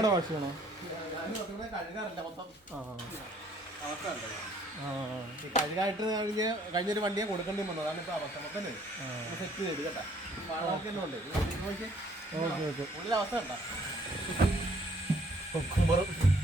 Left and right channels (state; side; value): normal; both; correlation 0.62